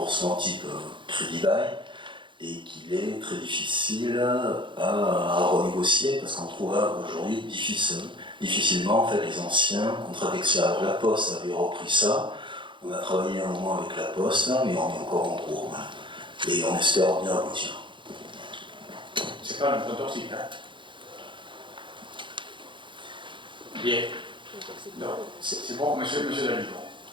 type crédit bail et qu'il est très difficile à renégocier parce qu'on trouve aujourd'hui difficilement en fait, les anciens contrats Dexia. Alors la Poste avait repris ça, on a travaillé un moment avec la Poste, mais on est encore en cours. Hein. Et on espère bien aboutir. C'est pas un emprunt toxique, hein? Bien. C'est bon, monsieur David.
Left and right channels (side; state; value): left; late; 0.23 ms